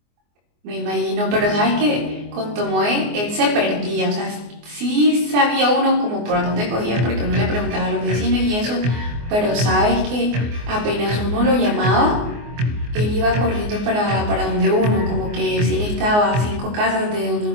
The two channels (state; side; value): late; left; 24 ms